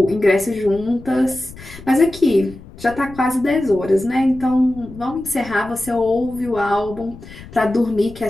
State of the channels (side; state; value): left; noise; rumble, 17 dB below the sound